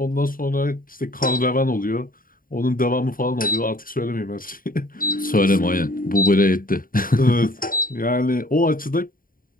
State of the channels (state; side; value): late; right; 0.41 ms